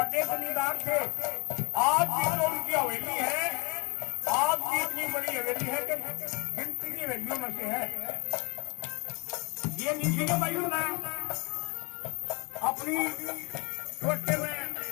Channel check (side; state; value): right; quieter; 29.8 dB